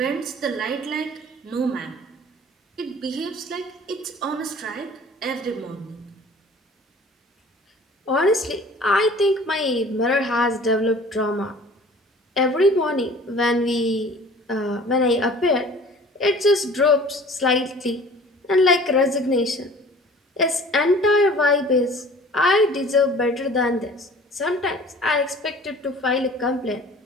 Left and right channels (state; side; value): normal; both; correlation 0.47